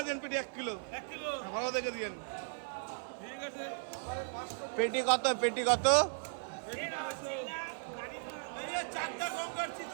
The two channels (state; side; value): silent; left; 53 dB below the other